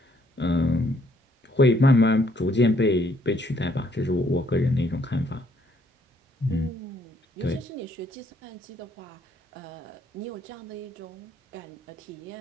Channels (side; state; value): both; normal; correlation 0.68